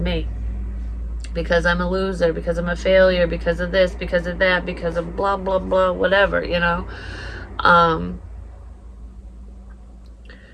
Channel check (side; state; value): both; identical; correlation 1.00